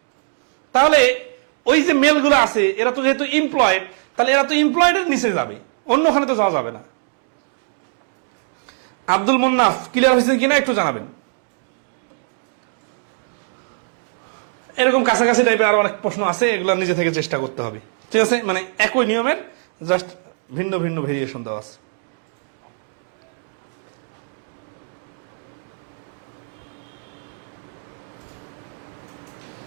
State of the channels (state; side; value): silent; left; digital silence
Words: তাহলে ওই যে মেল গুলো আছে, এরা তো যেহেতু এমপ্লয়েড, তাহলে এরা তো এমপ্লয়েডের নিচে যাবে, অন্যখানে তো যাওয়া যাবে না। আব্দুল মুন্নাফ, ক্লিয়ার হয়েছে কিনা একটু জানাবেন। এরকম কাছাকাছি টাইপের আরো অনেক প্রশ্ন আছে, এগুলো নিজে থেকে চেষ্টা করতে হবে, ঠিক আছে? মানে একই নিয়মের জাস্ট ভিন্ন ভিন্ন ভেরিয়েশন দেওয়া আছে।